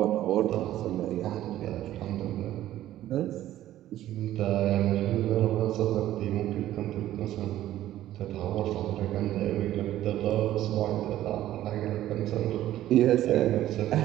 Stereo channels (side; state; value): left; quieter; 13.5 dB